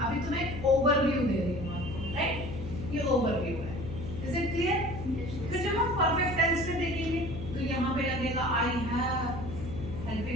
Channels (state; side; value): noise; left; hum, 8 dB below the sound